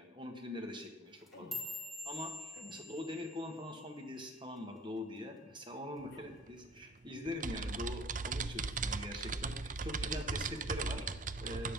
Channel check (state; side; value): normal; both; correlation 0.51